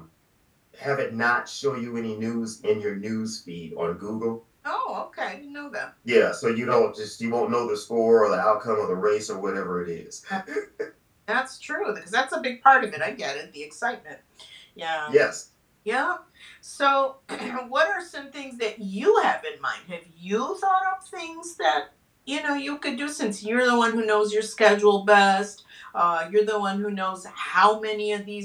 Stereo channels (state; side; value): identical; both; correlation 1.00